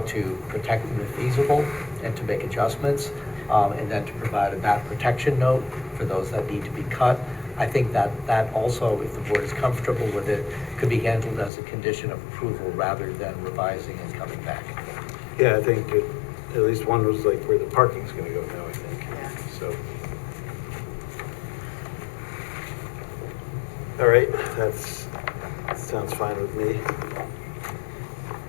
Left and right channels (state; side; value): drops out; right; at 11.5 s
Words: to protect them if feasible and to make adjustments, and then to provide a bat protection note for those that need to be cut, I think that also, if the board is comfortable with it, could be handled as a condition of approval rather than revising and coming back. Yeah, I think at least one was like where the parking's gonna go now, I think. So. All right, that sounds fine with me.